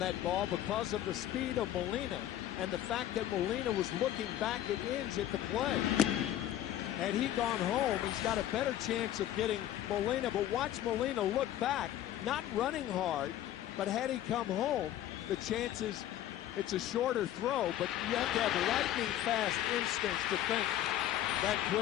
ball because of the speed of Molina and the fact that Molina was looking back at Inge at the play. Had he gone home, he's got a better chance of getting Molina. But watch Molina look back, not running hard, but had he come home, the chances, it's a shorter throw, but you have to have lightning fast instincts to think that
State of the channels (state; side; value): quieter; right; 12.5 dB